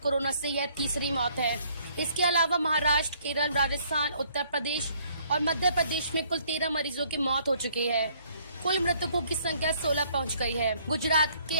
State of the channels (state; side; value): inverted; both; correlation -0.63